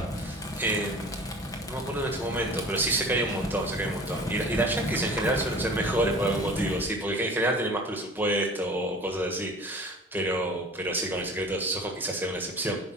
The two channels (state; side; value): normal; both; correlation 0.42